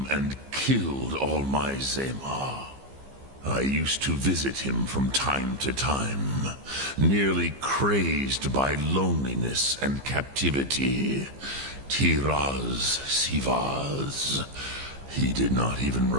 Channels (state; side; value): late; left; 15 ms